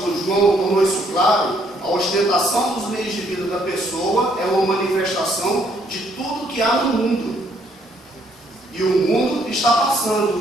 João tornou isso claro, a ostentação dos meios de vida da pessoa é uma manifestação de tudo que há no mundo. E o mundo está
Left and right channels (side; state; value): both; normal; correlation 0.68